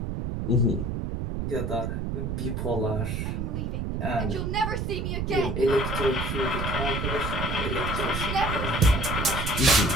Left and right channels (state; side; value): noise; right; rumble, 2 dB below the sound